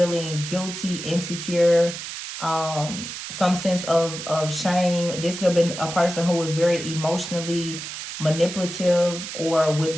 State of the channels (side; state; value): right; noise; hiss, 8 dB below the sound